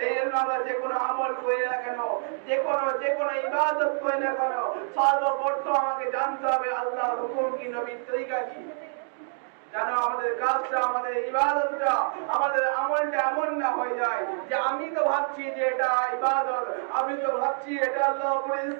জন্য আমরা যে কোনো আমল করি না কেন, যে কোনো ইবাদত করি না কেন, সর্বপ্রথম আমাকে জানতে হবে আল্লাহর হুকুম কি, নবীর তরিকা কি। যেন আমাদের কাজটা, আমাদের ইবাদতটা, আমাদের আমলটা এমন না হয়ে যায় যে আমি তো ভাবছি যে এটা ইবাদত, আমি তো ভাবছি এটা আল্লাহ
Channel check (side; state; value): left; silent; 60 dB below the other